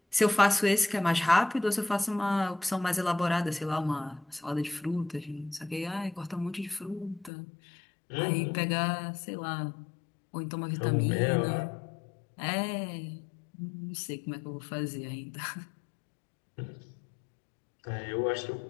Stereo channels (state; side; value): drops out; right; at 7.3 s